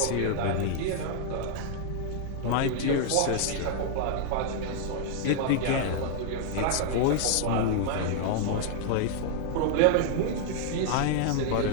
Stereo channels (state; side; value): different; both; correlation -0.01